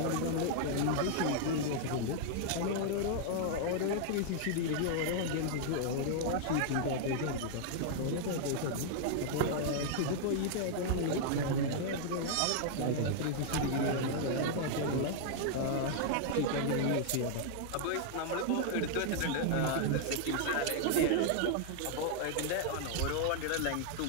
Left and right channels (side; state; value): both; different; correlation -0.01